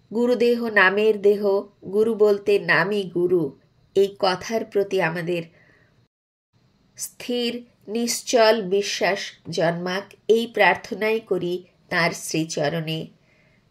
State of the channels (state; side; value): identical; both; correlation 1.00